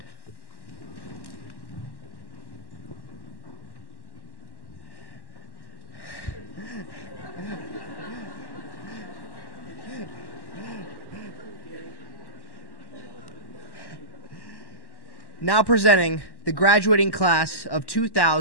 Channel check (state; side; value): late; right; 1.1 ms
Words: Now presenting the graduating class of